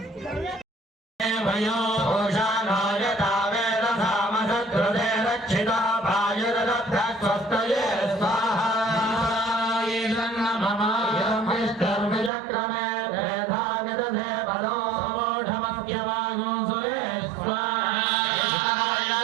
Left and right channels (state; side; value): drops out; left; at 12.3 s